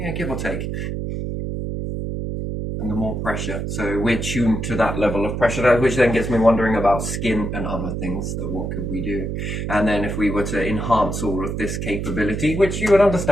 give or take. And the more pressure. So we're tuned to that level of pressure, which then gets me wondering about skin and other things. So what could we do? And then if we were to enhance all of this capability, which you would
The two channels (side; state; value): right; noise; hum, 3 dB below the sound